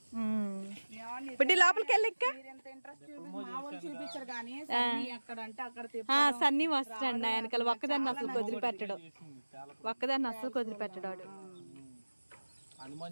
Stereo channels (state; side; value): inverted; both; correlation -1.00